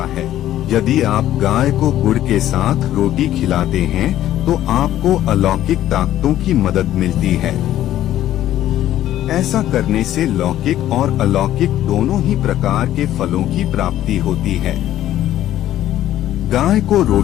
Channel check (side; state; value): right; quieter; 12.8 dB